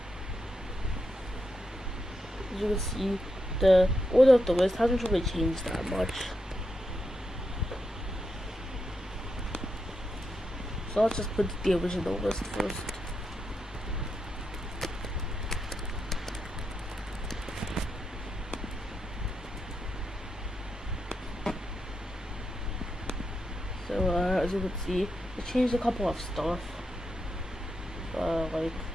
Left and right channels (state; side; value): normal; both; correlation 0.85